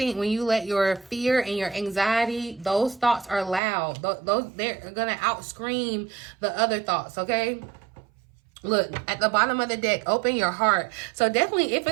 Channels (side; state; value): left; drops out; at 3.6 s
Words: you let your fear and your anxiety, those thoughts are loud. They're going to outscream the other thoughts, okay? Look, at the bottom of the deck, open your heart. So definitely